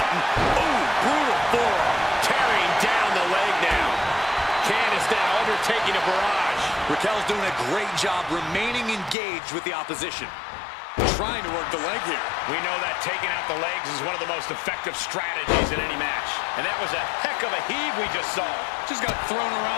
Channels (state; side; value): drops out; right; at 9.2 s